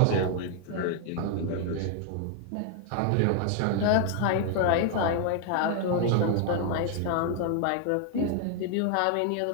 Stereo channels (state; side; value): different; both; correlation 0.00